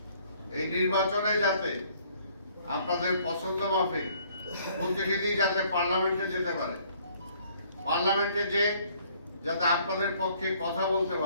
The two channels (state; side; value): inverted; both; correlation -0.61